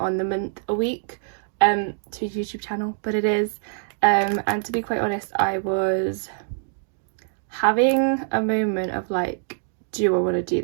the month a week to a YouTube channel, but it is. And to be quite honest, I was having a moment of like, do I want to do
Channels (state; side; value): silent; left; digital silence